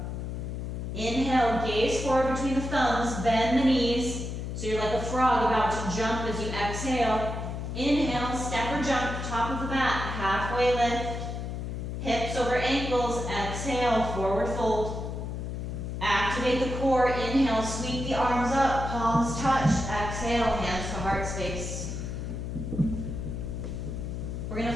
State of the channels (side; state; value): left; noise; hum, 5 dB below the sound